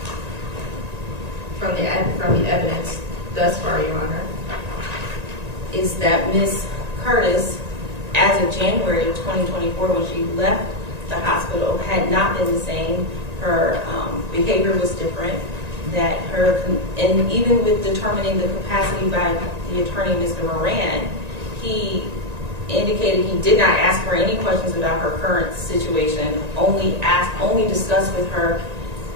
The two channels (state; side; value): late; left; 1.9 ms